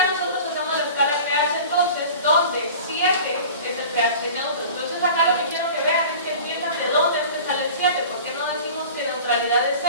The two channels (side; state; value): both; inverted; correlation -0.39